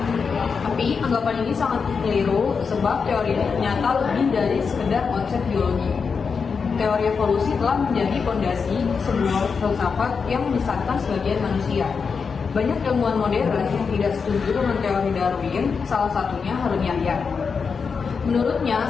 Tapi anggapan ini sangat keliru sebab teori ini ternyata lebih dari sekedar konsep biologi. Teori evolusi telah menjadi fondasi sebuah filsafat yang menyesatkan sebagian manusia. Banyak ilmuwan modern yang tidak setuju dengan teori Darwin, salah satunya Harun Yahya. Menurutnya,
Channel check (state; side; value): quieter; right; 5.5 dB